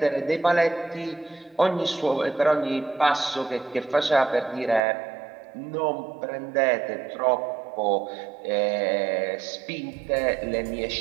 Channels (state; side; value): drops out; left; at 4.8 s